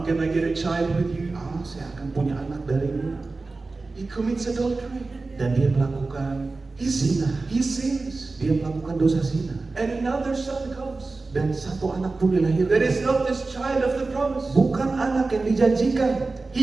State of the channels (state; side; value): quieter; left; 3.6 dB